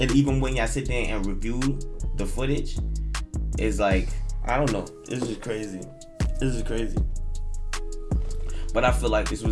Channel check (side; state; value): both; identical; correlation 1.00